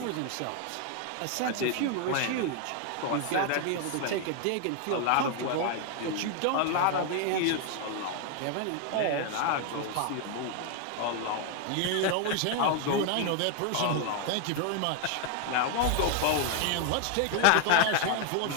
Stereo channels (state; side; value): different; both; correlation 0.01